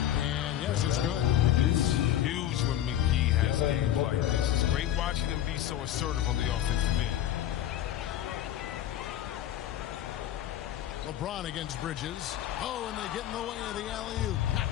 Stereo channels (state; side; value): quieter; right; 11.8 dB